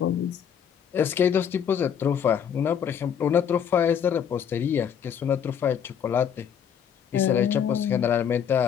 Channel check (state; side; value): quieter; right; 8.2 dB